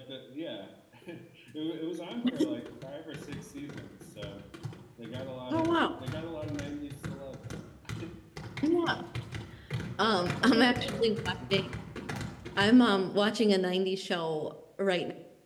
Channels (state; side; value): identical; both; correlation 1.00